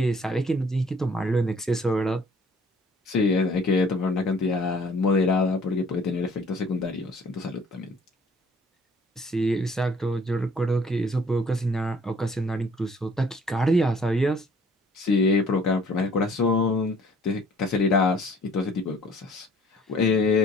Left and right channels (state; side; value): normal; both; correlation 0.56